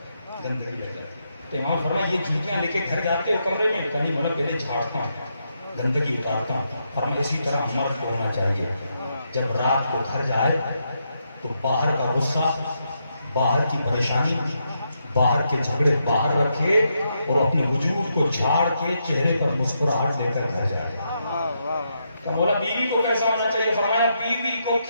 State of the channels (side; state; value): both; inverted; correlation -0.81